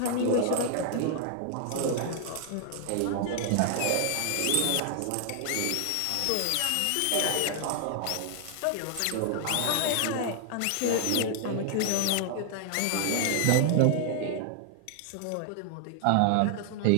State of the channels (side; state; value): both; different; correlation 0.00